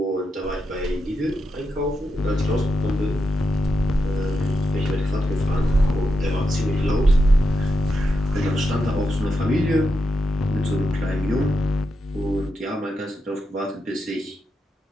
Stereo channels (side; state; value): both; normal; correlation 0.85